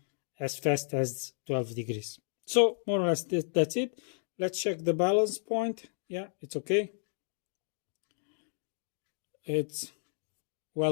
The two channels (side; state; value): right; silent; 56 dB below the other